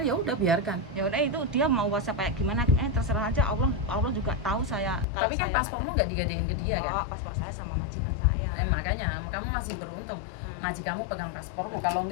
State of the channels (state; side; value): drops out; right; at 5.1 s